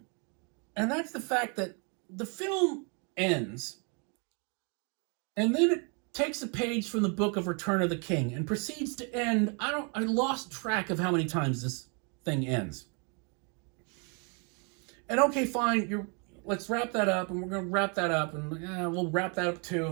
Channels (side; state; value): left; quieter; 35.8 dB